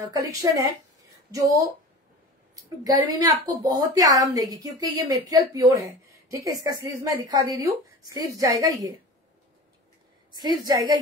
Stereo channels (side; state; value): both; normal; correlation 0.35